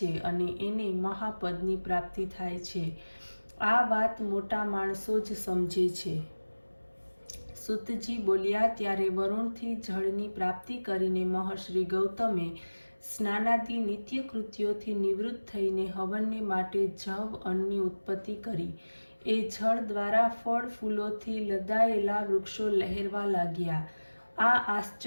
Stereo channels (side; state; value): both; inverted; correlation -1.00